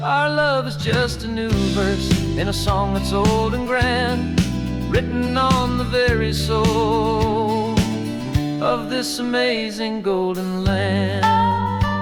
Our love is just a new verse in a song that's old and grand, written on the very soul of this amazing golden land.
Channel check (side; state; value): both; identical; correlation 1.00